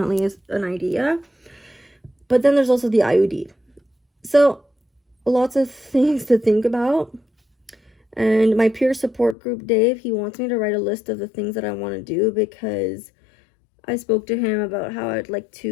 an idea. But then there's also the IUD. So lots of things to think about. And my peer support group, Dave, he wants me to write a list of the things that I want to do, because I spoke to him about how I'd like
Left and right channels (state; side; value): drops out; right; at 9.3 s